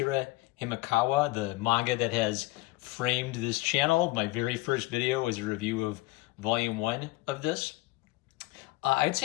Himekawa, the manga that has framed this channel. My very first video was a review of Volume 1 of this. I'd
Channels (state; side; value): quieter; right; 20.8 dB